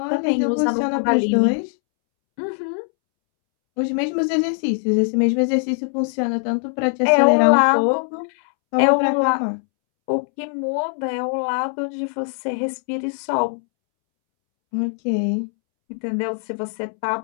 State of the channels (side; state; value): right; silent; 65 dB below the other